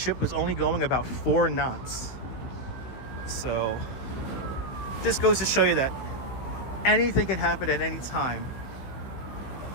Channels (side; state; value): right; late; 16 ms